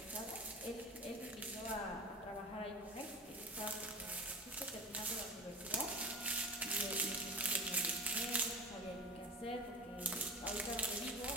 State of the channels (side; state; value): both; normal; correlation 0.33